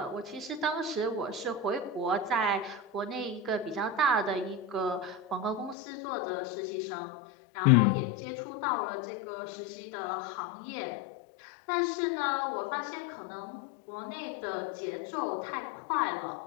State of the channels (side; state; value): right; drops out; at 5.8 s